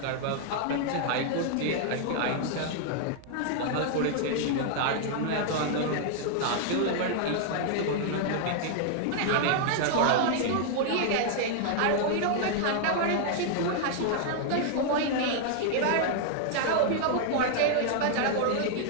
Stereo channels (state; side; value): different; both; correlation 0.00